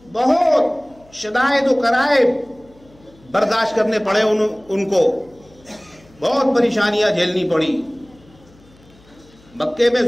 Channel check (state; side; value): noise; left; hum, 28 dB below the sound